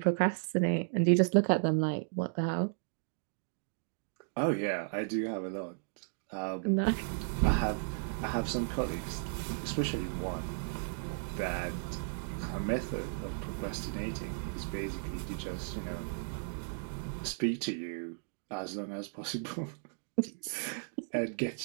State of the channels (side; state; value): left; silent; digital silence